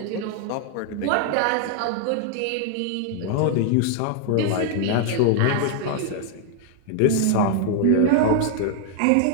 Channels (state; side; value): different; both; correlation 0.00